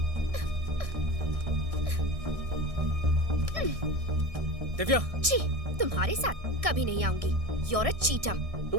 दिव्या। छी, तुम्हारे साथ कभी नहीं आऊंगी। You're a cheater।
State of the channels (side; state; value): left; late; 1.6 ms